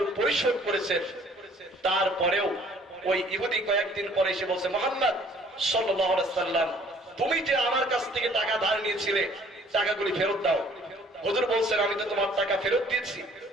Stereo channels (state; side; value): normal; both; correlation 0.56